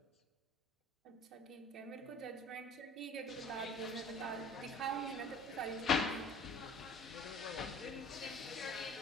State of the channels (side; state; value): both; normal; correlation 0.47